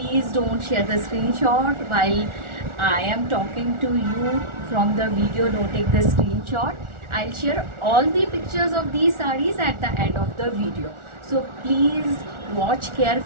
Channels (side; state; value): left; late; 1.4 ms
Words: don't share the screenshot while I am talking to you from the video. Don't take the screenshot. I'll share all the pictures of these sarees at the end of the video. So please watch